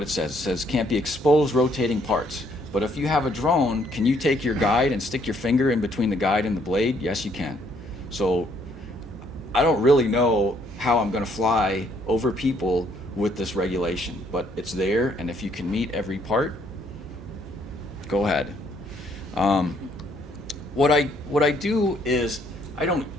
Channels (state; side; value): normal; both; correlation 0.67